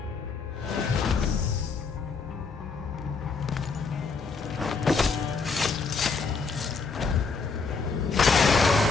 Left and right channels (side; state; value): right; quieter; 4.7 dB